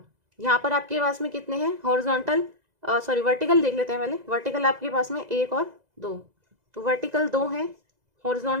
यहाँ पर आपके पास में कितने हैं हॉरिजॉन्टल, सॉरी वर्टिकल देख लेते हैं पहले। वर्टिकल आपके पास में 1 और 2, तो वर्टिकल 2 है,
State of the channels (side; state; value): left; late; 2.0 ms